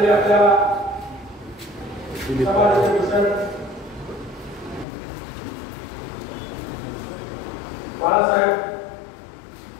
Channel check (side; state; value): right; drops out; at 4.9 s